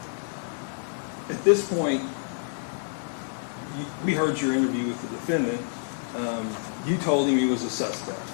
at this point, we heard your interview with the defendant. You told him he was a suspect,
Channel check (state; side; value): silent; right; 59 dB below the other